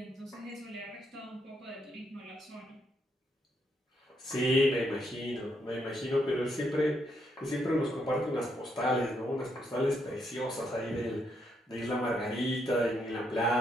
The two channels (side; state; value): both; normal; correlation 0.76